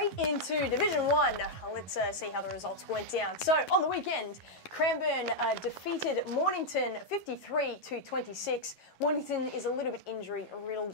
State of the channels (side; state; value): right; late; 11 ms